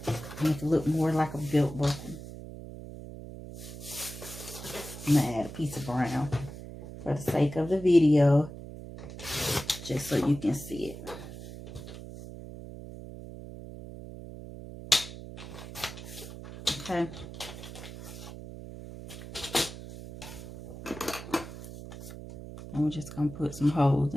make it look more like a belt buckle. I'm gonna add a piece of brown for the sake of the video, just so you can see it. Okay. And we're just going to put some holes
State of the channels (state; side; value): noise; right; hum, 12 dB below the sound